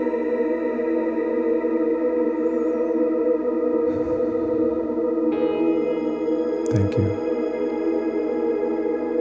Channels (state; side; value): identical; both; correlation 1.00